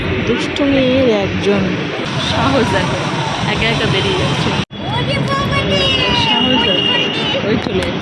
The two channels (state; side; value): identical; both; correlation 1.00